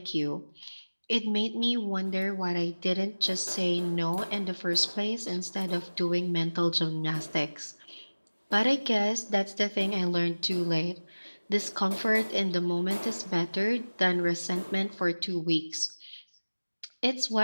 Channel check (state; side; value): inverted; both; correlation -1.00